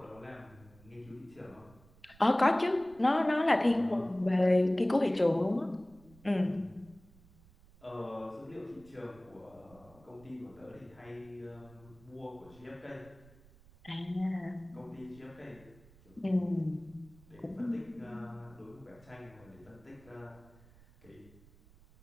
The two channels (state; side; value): noise; right; rumble, 25 dB below the sound